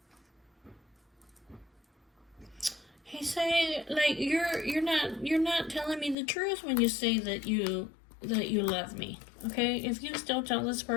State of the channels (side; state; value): right; drops out; at 6.2 s